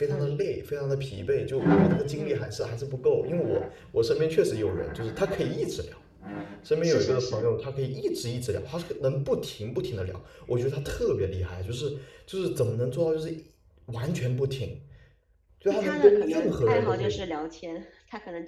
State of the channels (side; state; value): both; identical; correlation 1.00